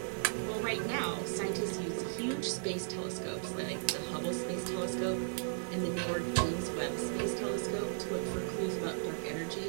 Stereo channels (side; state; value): left; silent; digital silence